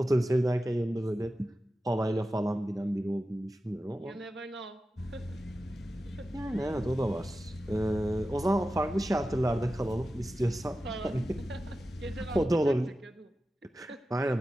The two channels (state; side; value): normal; both; correlation 0.93